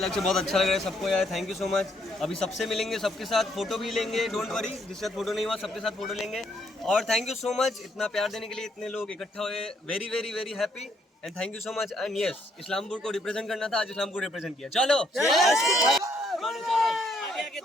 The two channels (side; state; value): both; normal; correlation 0.71